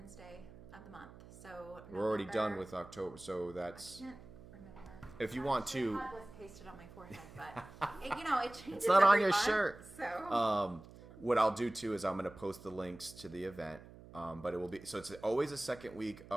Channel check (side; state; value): right; noise; hum, 18 dB below the sound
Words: of the month. So we're already done with October, so that's, I can't remember. If you want to, it was pasted on my forehead, but it changes. It's not on your month, shirt. So what I'll do too is I'm going to post the links to the event. But it will be, so it's always the second week